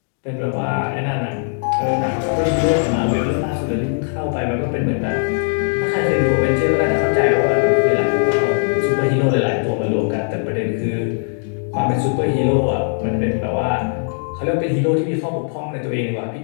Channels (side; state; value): right; silent; digital silence